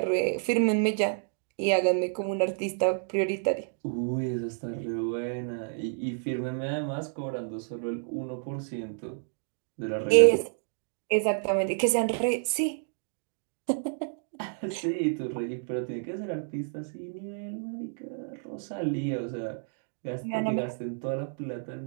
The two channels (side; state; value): left; silent; digital silence